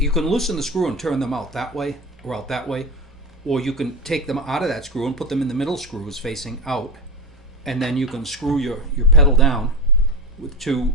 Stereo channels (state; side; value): normal; both; correlation 0.19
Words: can loosen the screw and turn them out that way or out that way, or you can take them out of that screw and put them in the middle screws facing out, and then you can screw your pedal down with two